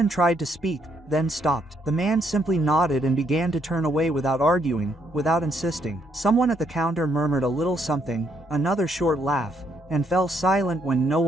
tried to speak, then stopped. The man simply nodded and began to turn away without arguing, without insisting. Someone at the counter murmured a little something, another short laugh, and fell silent when no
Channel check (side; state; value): both; normal; correlation 0.73